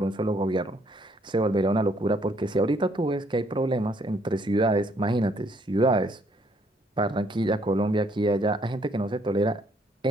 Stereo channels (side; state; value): both; normal; correlation 0.67